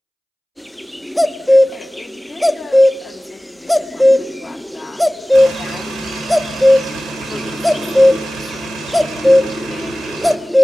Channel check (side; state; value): both; normal; correlation 0.97